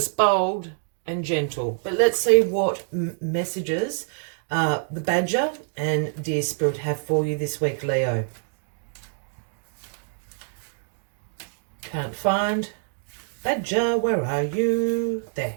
bold, and gentle. But let's see what messages the Badger and Dear Spirit have for you this week, Leo. Can't find Badger, where are you? There.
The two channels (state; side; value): silent; left; digital silence